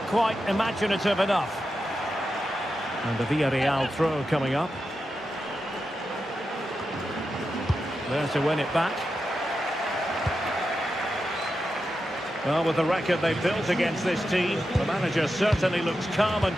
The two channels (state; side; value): normal; both; correlation 0.89